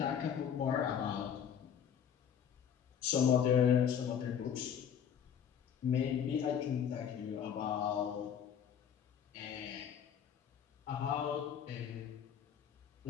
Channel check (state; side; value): quieter; right; 8.4 dB